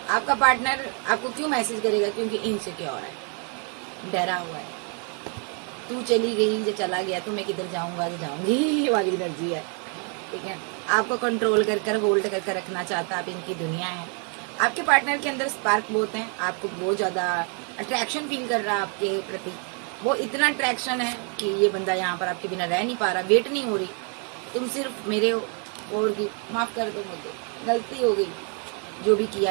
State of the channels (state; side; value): quieter; left; 39.6 dB